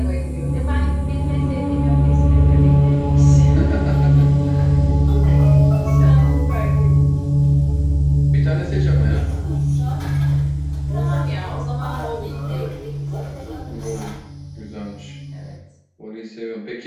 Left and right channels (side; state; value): both; identical; correlation 1.00